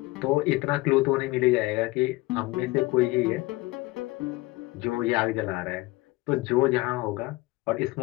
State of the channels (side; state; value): right; quieter; 21.2 dB